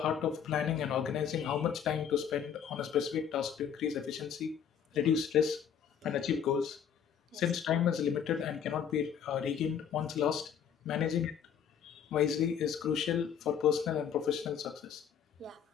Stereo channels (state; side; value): quieter; right; 8.2 dB